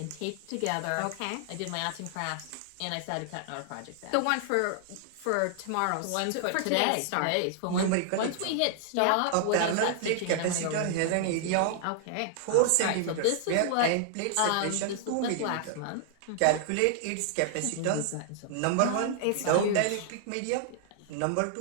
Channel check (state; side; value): different; both; correlation -0.01